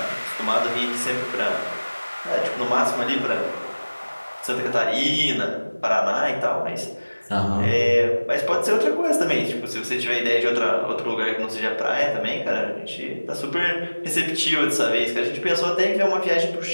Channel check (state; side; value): inverted; both; correlation -1.00